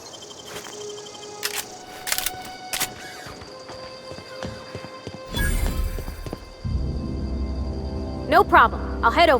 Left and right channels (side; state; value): both; identical; correlation 1.00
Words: No problem. I'll head